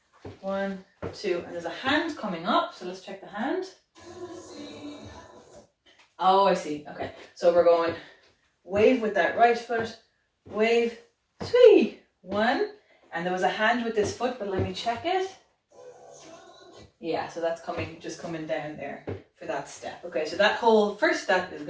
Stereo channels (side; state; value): both; identical; correlation 1.00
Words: 1, 2, and there's a hand coming up. So let's check the hand. Oh, I see. Okay, so we're going wave with that right foot, wave, 3, 1, and there was a hand with this foot, but let me check it. Yeah, so that's just coming down there for that step. Okay, so that whole first step is